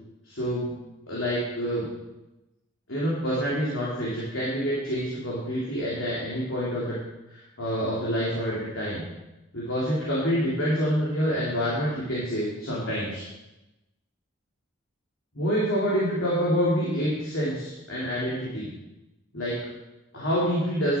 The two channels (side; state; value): both; normal; correlation 0.36